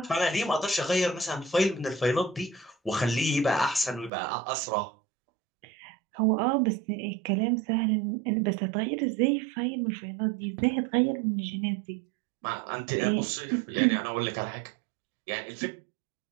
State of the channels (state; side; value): drops out; left; at 4.1 s